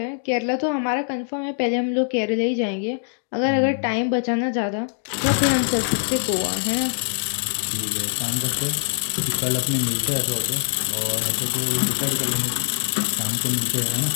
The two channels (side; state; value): right; silent; digital silence